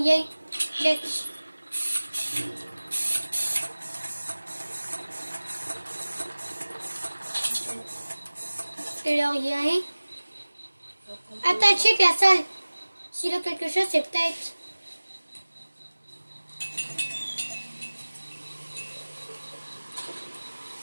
Check. Il a rien. Attends, check la salle. S'il a quelque chose, c'est peut-être...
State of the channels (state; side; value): inverted; both; correlation -1.00